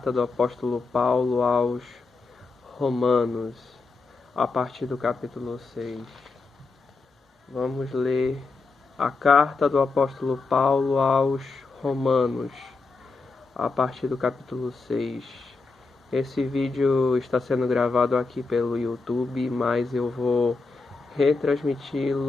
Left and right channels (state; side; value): quieter; right; 4.0 dB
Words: do apóstolo Paulo aos Romanos, a partir do capítulo 6. Vamos ler a carta do apóstolo Paulo aos Romanos, a partir do capítulo 6. Esse vídeo está sendo gravado aqui pelo YouTube, mas eu vou